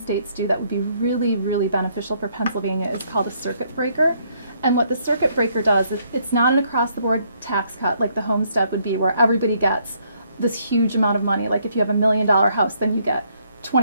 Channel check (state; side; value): inverted; both; correlation -0.70